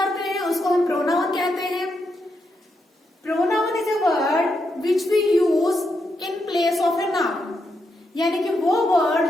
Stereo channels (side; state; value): both; normal; correlation 0.82